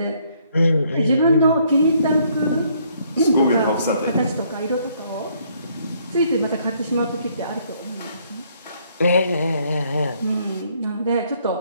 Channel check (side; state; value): both; inverted; correlation -0.67